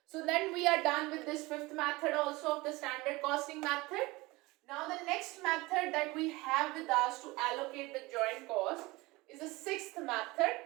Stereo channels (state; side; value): quieter; left; 22.0 dB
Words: So then we are done with this fifth method also of the standard costing method. Now the next method that we have with us to allocate the joint cost is the sixth method,